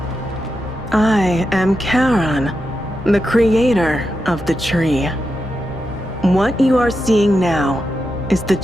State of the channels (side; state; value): both; normal; correlation 0.87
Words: I am Charon, the creator of the tree. What you are seeing now is the